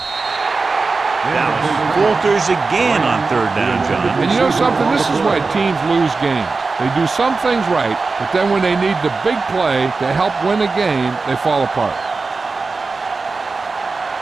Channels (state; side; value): quieter; left; 4.1 dB